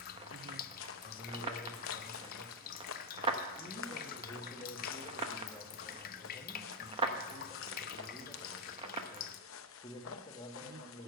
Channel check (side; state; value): both; normal; correlation 0.00